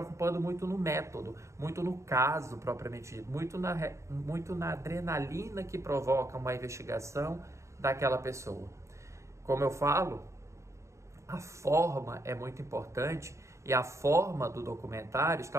muito no método, muito no caso propriamente dito, muito na adrenalina que provoca uma investigação daquela pessoa. Como eu falo, a forma é muito importante, e a forma do documentário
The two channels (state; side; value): late; left; 0.14 ms